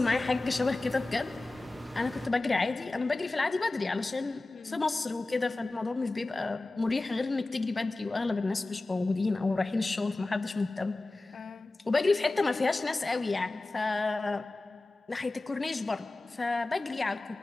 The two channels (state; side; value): quieter; right; 3.1 dB